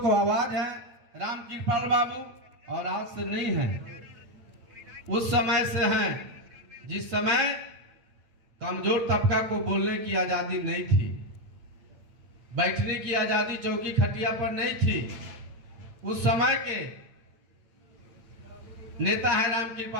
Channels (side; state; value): left; late; 8.8 ms